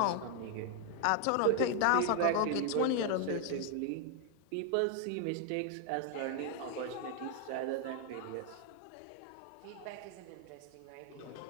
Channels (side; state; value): both; different; correlation 0.00